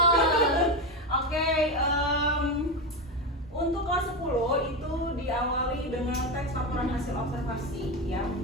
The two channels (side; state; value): both; normal; correlation 0.15